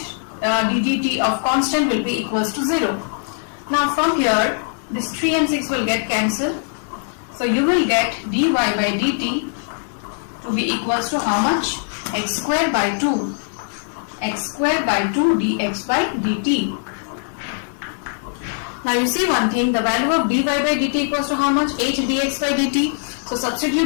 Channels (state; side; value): silent; right; 65 dB below the other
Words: ddt of constant will be equals to 0. Now from here this 3 and 6 will get cancelled. So you will get dy by dt to be equals to how much? X square by 2. X square by 2 dx by dt. Now you see one thing, the value of dy by dt equals to how much? 8 dx by dt. So